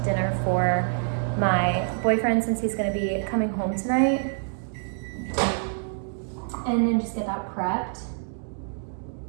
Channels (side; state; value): left; silent; digital silence